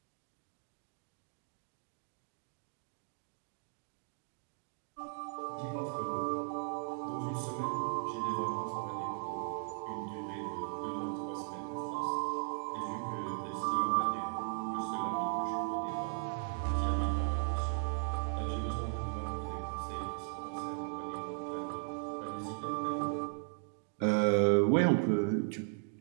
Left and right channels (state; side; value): silent; left; 53 dB below the other